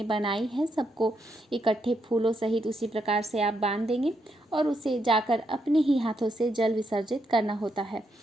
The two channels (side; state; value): both; normal; correlation 0.80